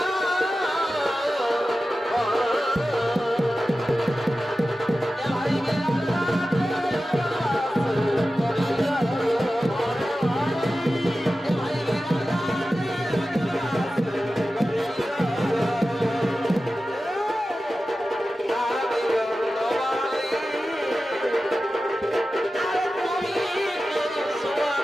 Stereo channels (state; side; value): normal; both; correlation 0.94